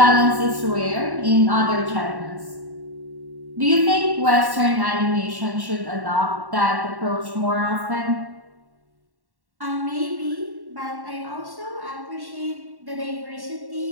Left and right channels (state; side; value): late; left; 1.1 ms